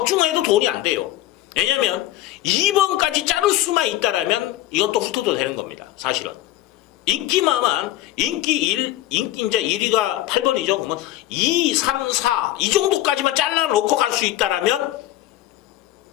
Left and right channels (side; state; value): right; quieter; 14.8 dB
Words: 돈이 안 돼요. 왜냐면 2번까지 자를 수만 있다라면 이건 또 훑어도 되는 겁니다. 사실은. 인기만만 인기 이제 1위가 8번이죠. 그러면 2, 3, 4 이 정도까지만 잘라놓고 갈 수 있다라면